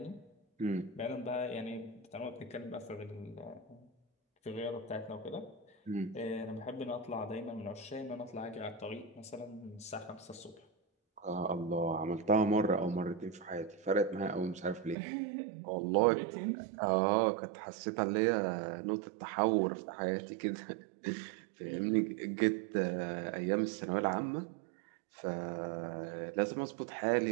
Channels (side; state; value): left; drops out; at 15.0 s